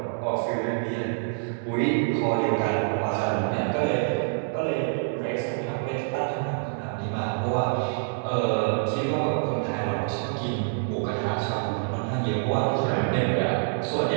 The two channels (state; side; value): silent; left; 61 dB below the other